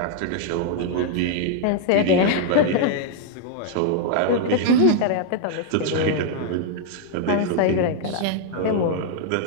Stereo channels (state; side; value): different; both; correlation 0.00